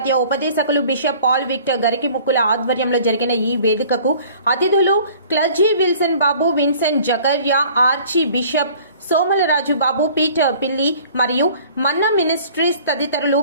ఉపదేశకులు బిషప్ పాల్ విక్టర్ గరికి ముక్కుల ఆధ్వర్యంలో జరిగిన ఈ వేదికకు అతిథులు క్లర్జీ విల్సన్ బాబు, విన్సెంట్ జకర్యా, ఆర్చి బిషప్ సోమలరాజు బాబు, పీటర్ పిల్లి మరియు మన్నా మినిస్ట్రీస్ తదితరులు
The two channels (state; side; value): inverted; both; correlation -0.50